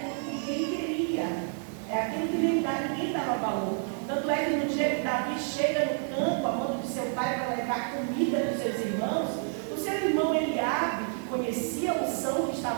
que ninguém queria, é aquilo que ninguém dava valor. Tanto é que no dia que Davi chega no campo, a mão de seu pai para levar comida dos seus irmãos, o seu irmão Eliabe, que conhecia a unção que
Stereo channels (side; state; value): left; silent; 58 dB below the other